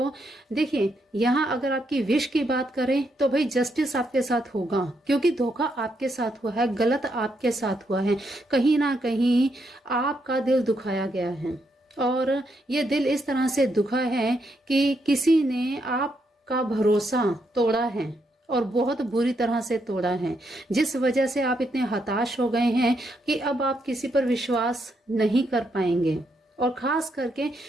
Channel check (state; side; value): normal; both; correlation 0.78